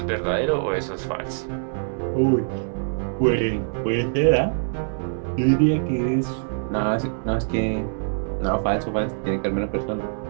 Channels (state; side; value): silent; left; 63 dB below the other